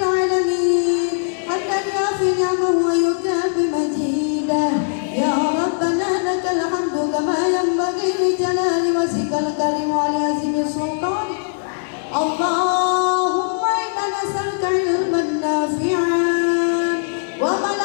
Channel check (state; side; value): silent; right; digital silence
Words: alamin. Hamdan yafi ni'amahu wa yukafi majidah. Ya Rabbana lakal hamdu kama yanbaghi li jalali wajhikal karim wa li azimi sultanik. Allahumma inna nas'aluka ilman nafi'an wa